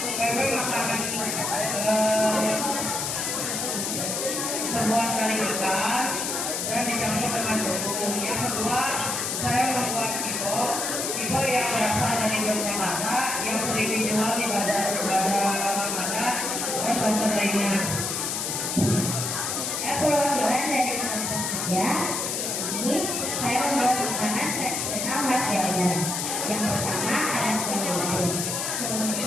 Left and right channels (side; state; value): left; noise; hiss, 1 dB below the sound